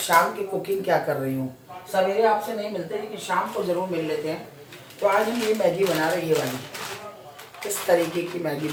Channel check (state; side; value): identical; both; correlation 1.00